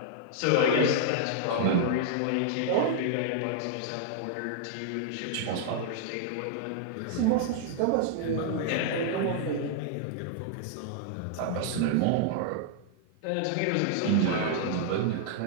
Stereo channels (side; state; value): both; different; correlation -0.01